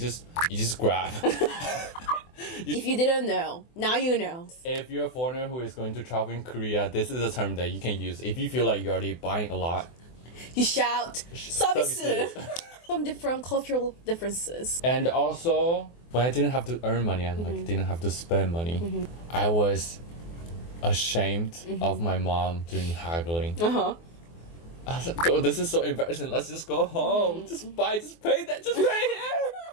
grab. if you didn't know, now you know. If you're a foreigner who is going to travel in Korea, this is a term that you can use. If you feel like you're already buying a lot, You shout service. service. Some different cultural differences. And also, when I didn't have to earn money and like didn't have to spend money, I was ashamed of my mom doing haggling. I was like, "Oh, this is so embarrassing. Let's just go home. Just pay that. Just pay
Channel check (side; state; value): right; late; 24 ms